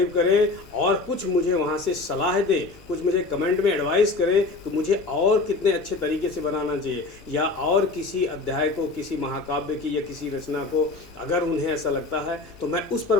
करें, और कुछ मुझे वहाँ से सलाह दें, कुछ मुझे कमेंट में एडवाइस करें कि मुझे और कितने अच्छे तरीके से बनाना चाहिए, या और किसी अध्याय को, किसी महाकाव्य की या किसी रचना को अगर उन्हें ऐसा लगता है तो मैं उस पर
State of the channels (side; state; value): right; quieter; 3.7 dB